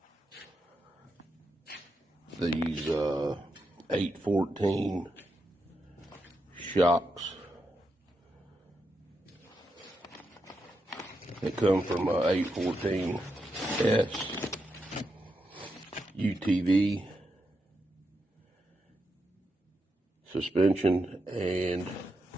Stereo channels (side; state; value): both; normal; correlation 0.85